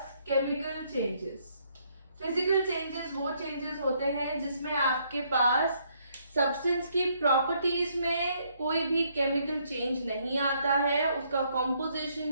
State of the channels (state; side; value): inverted; both; correlation -0.70